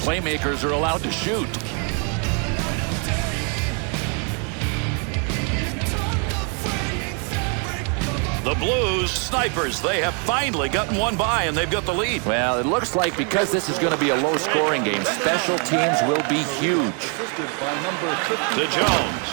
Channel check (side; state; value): left; quieter; 38.9 dB